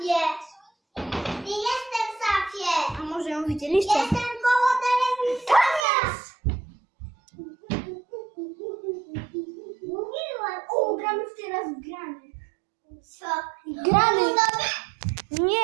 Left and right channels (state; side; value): drops out; left; at 5.9 s